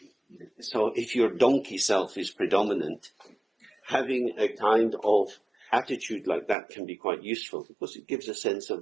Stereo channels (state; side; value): drops out; left; at 6.6 s